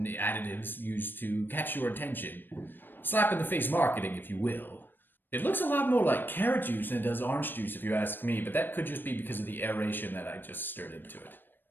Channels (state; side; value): late; right; 0.094 ms